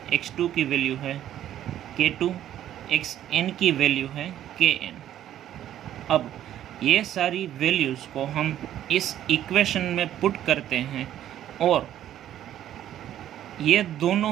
x2 की वैल्यू है k2, xn की वैल्यू है kn। अब ये सारी वैल्यूज़ को हम इस इक्वेशन में पुट करते हैं और ये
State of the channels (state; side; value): quieter; left; 11.6 dB